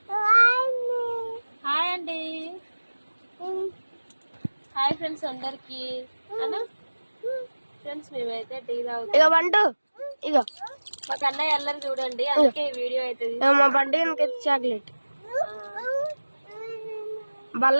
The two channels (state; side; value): inverted; both; correlation -1.00